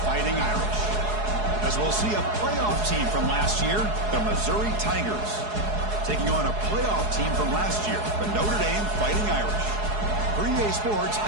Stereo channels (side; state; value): left; late; 4.7 ms